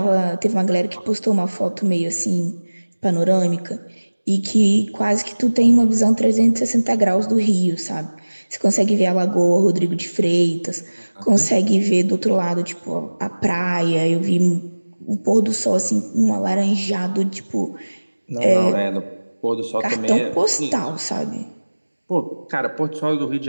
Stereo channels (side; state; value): both; inverted; correlation -1.00